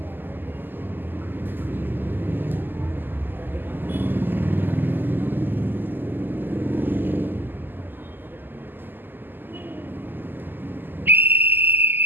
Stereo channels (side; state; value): left; late; 0.092 ms